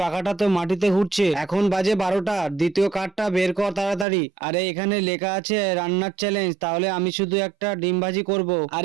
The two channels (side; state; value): left; drops out; at 4.0 s